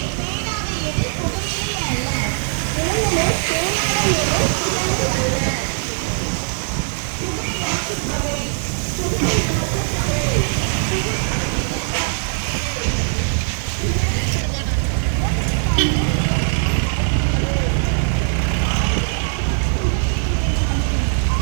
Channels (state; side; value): silent; left; 66 dB below the other